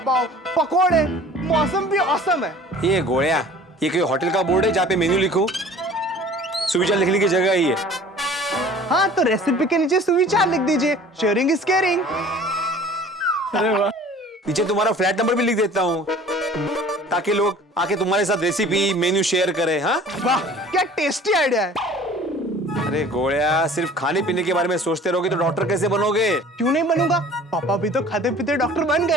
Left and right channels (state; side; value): normal; both; correlation 0.47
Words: पकोड़े। मौसम भी औसम है। ये गोया, ये कोई होटल का बोर्ड है जहाँ पे मेन्यू लिखूं? सुविचार लिखने की जगह ही है। हाँ, तो रेसिपी के नीचे सुविचार लिख दीजिए। Sharing is caring. अरे वाह। नीचे तुम्हारा फ्लैट नंबर भी लिख देता हूँ, ताकि लोग आके तुम्हारे साथ रेसिपी मेन्यू शेयर करें। हाँ, वाह, क्या टेस्टी आइडिया है। अरे गोया, सिर्फ खाने पीने के बारे में सोचते रहोगे तो डॉक्टर कैसे बनोगे? क्यों नहीं बनूंगा? पापा भी तो खाते पीते डॉक्टर बन